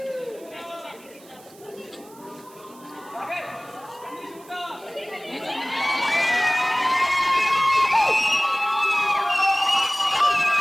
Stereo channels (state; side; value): noise; right; hiss, 24 dB below the sound